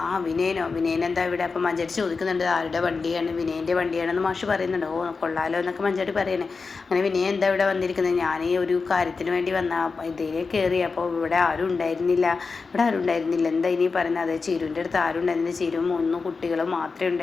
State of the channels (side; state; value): right; quieter; 4.6 dB